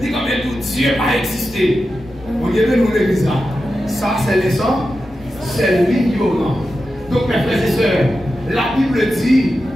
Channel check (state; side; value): normal; both; correlation 0.91